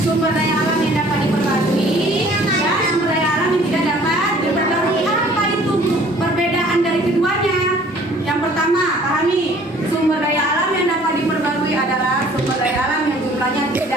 Sumber daya alam yang dapat diperbarui dan sumber daya alam yang tidak dapat diperbarui. Apa itu perbedaan dari keduanya? Yang pertama, pahami, sumber daya alam yang dapat diperbarui adalah sumber daya alam yang jumlahnya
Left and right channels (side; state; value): both; normal; correlation 0.54